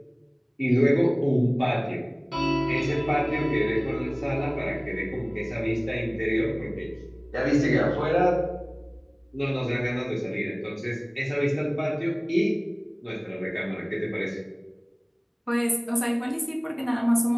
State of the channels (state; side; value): identical; both; correlation 1.00